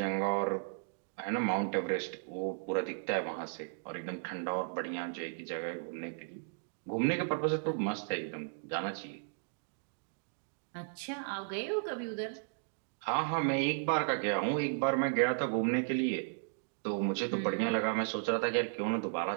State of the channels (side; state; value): left; silent; digital silence